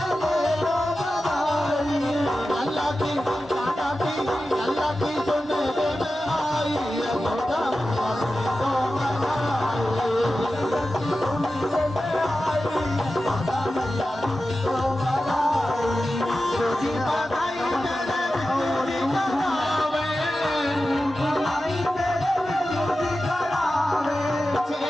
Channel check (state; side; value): normal; both; correlation 0.93